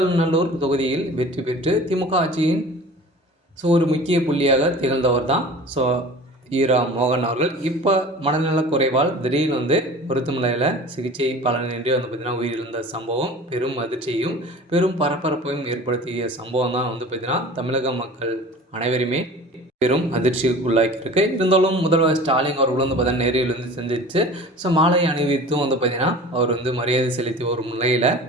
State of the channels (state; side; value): normal; both; correlation 0.41